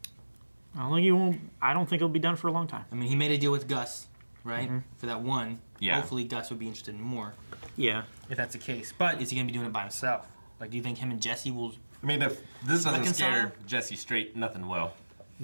I don't think he'll be done for a long time. I mean, he made a deal with Gus, right? For that one. Yeah. Hopefully Gus would be interested in more, Yeah. if that's the case. But is he going to be doing it by himself? Like, do you think him and Jesse will... I mean, if this doesn't Reconcile? scare Jesse straight, nothing will.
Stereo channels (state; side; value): inverted; both; correlation -1.00